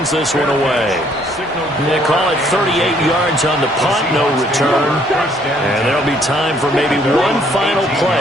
this one away. They call it 38 yards on the punt, no return. And there'll be time for maybe one final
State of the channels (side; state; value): both; normal; correlation 0.65